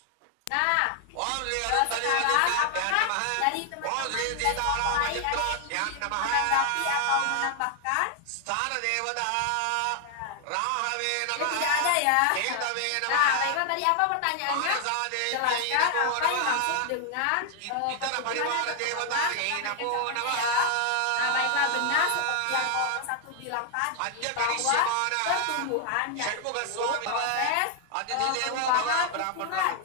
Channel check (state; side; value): different; both; correlation 0.00